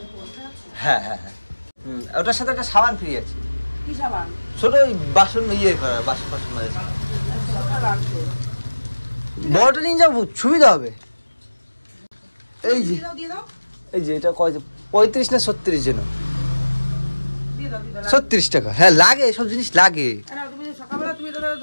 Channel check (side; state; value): both; inverted; correlation -1.00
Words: হ্যাঁ হ্যাঁ হ্যাঁ, ওটার সাথে একটা সাবান ফ্রি আছে। ছোট ওই বাসন ইয়ে করার, বাসন মাঝে বড়টা নিয়ে যাবো, সুবিধা হবে। এই যে এটা কয়, 35 না 36 যেন, 36 টাকা। হ্যাঁ লাগে, সব জিনিস লাগে।